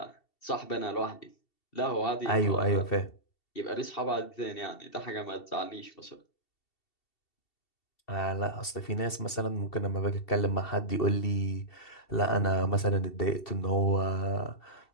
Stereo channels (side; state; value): right; late; 2.7 ms